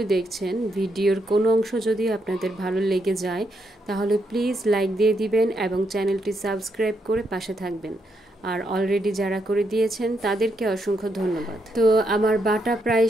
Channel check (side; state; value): both; normal; correlation 0.79